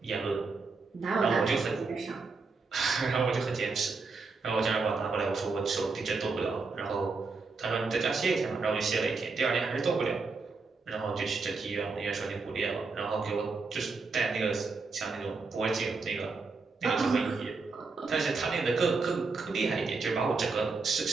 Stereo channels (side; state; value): left; quieter; 4.2 dB